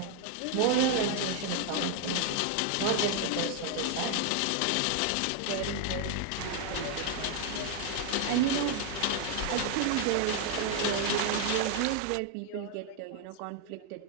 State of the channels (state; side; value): different; both; correlation 0.01